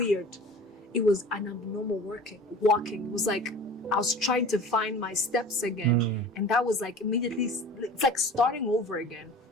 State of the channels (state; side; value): normal; both; correlation 0.40